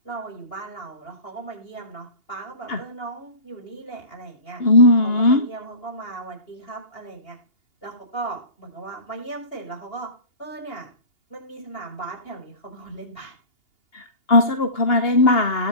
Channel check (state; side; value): late; right; 2.8 ms